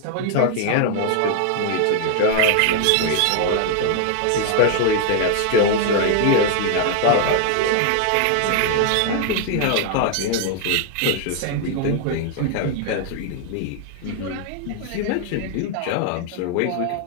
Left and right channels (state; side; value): different; both; correlation 0.00